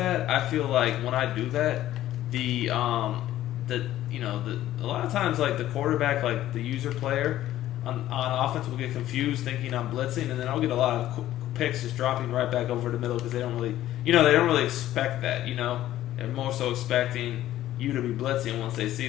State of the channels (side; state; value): right; quieter; 13.6 dB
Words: I feel like when I do that, a lot of times like the quarterback, like the user player on offense will get confused thinking I'm blitzing, and then I'll get a lot of picks just dropping right back over the middle because they don't really expect that. You know, they're more so expecting you to be blitzing once they see